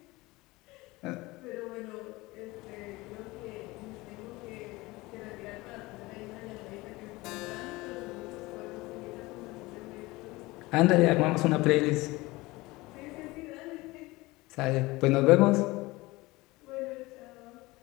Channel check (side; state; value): right; quieter; 21.3 dB